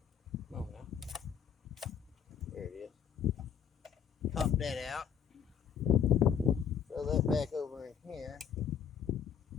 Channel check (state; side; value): quieter; right; 8.2 dB